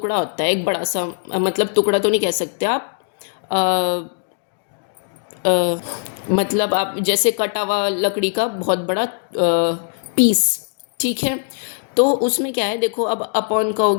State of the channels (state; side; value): silent; right; digital silence